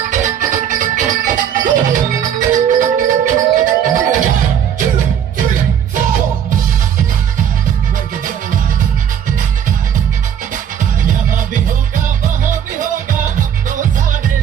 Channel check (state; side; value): quieter; left; 9.0 dB